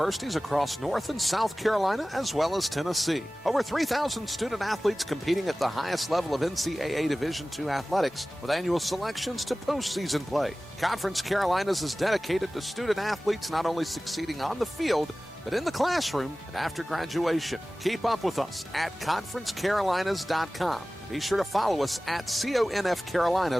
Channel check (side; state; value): both; normal; correlation 0.97